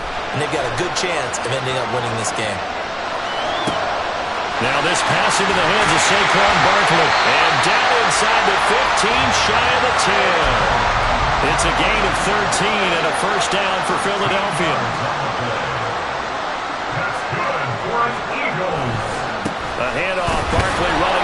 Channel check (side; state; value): both; identical; correlation 1.00